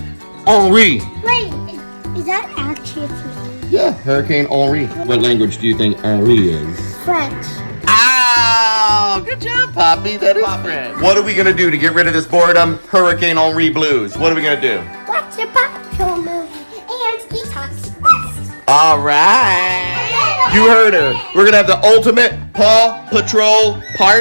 Henri. Wait, is that actually a thing? Yeah, Hurricane Henri. What language do you think Henri is? French. Ow! Good job, Poppy. That is French. What are we going to do to get rid of this boredom? Hurricane Henri blues. What are we going to do? Watch a Paw Patrol movie and eat toxic waste. All right. You heard her. We're going to have the ultimate Paw Patrol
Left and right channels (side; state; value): both; inverted; correlation -1.00